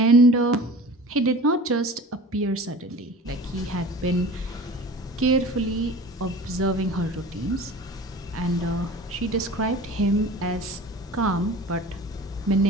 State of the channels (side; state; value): both; normal; correlation 0.40